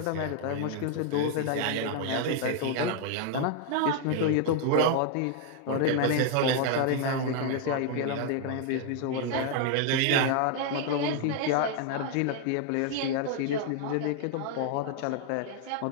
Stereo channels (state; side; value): different; both; correlation 0.00